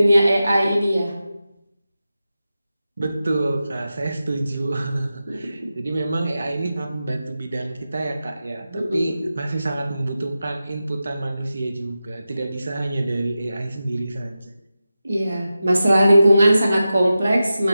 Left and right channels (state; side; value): inverted; both; correlation -0.92